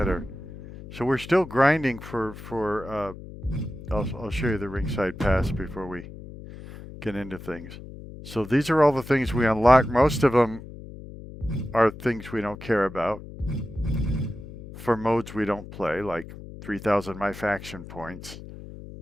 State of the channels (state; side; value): noise; left; hum, 14 dB below the sound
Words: So we're still grinding for I'll show you the Ringside Pass before we get into things. So these are all the things we unlock. Most of them are things we don't care about. For modes we don't play, like 3,000 My Faction points.